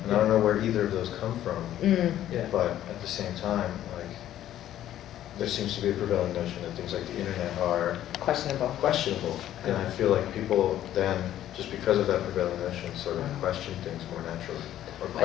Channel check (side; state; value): right; quieter; 12.2 dB